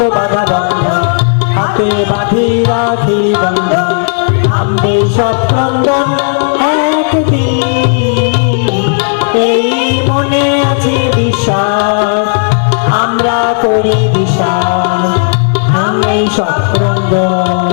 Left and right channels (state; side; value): silent; right; digital silence